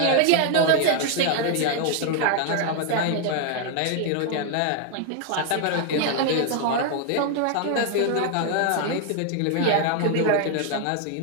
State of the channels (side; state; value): both; different; correlation 0.00